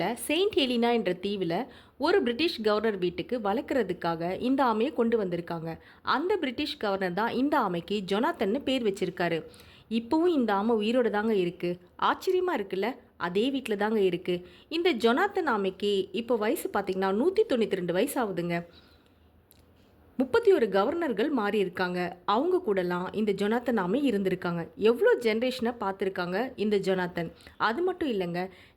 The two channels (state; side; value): identical; both; correlation 1.00